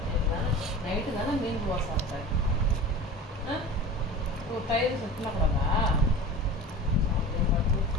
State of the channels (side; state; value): both; normal; correlation 0.35